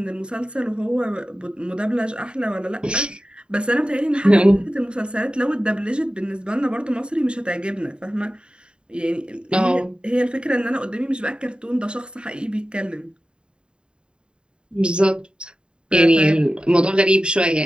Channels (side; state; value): left; late; 0.052 ms